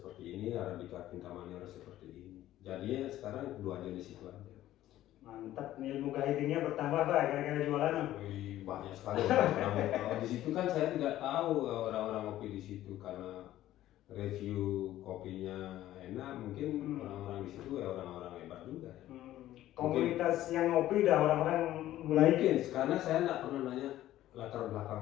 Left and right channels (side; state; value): right; quieter; 13.9 dB